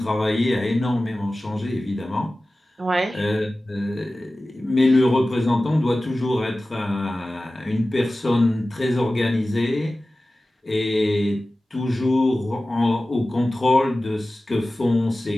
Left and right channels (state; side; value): normal; both; correlation 0.96